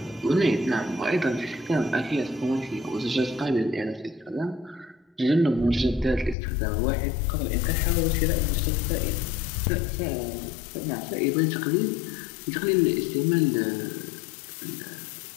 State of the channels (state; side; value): drops out; right; at 6.4 s